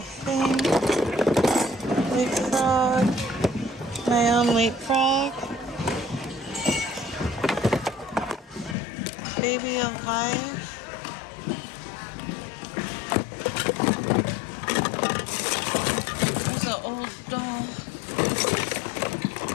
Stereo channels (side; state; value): right; drops out; at 8.8 s